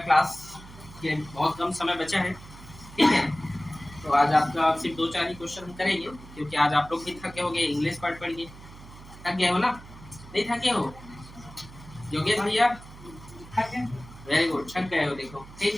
के बहुत कम समय बचा है। ठीक है, तो आज आपका सिर्फ 2-4 ही क्वेश्चन हम करेंगे, क्योंकि आज आप लोग भी थके हो गए, इंग्लिश पढ़ के थक गए हो ना? नहीं थके हो योगेश भैया? वेरी गुड, थक गए हो देखो। ठीक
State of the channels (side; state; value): right; noise; hum, 18 dB below the sound